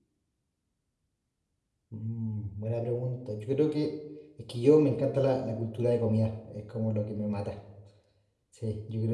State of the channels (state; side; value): identical; both; correlation 1.00